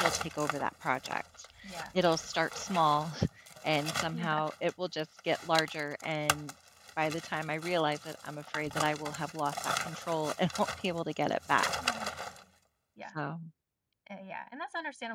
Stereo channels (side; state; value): both; identical; correlation 1.00